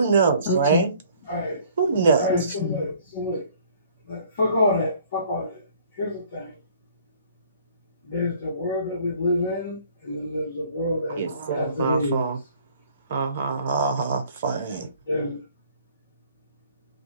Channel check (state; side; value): inverted; both; correlation -0.56